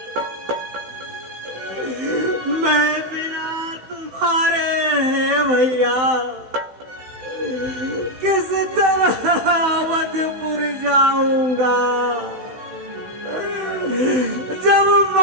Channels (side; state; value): left; late; 16 ms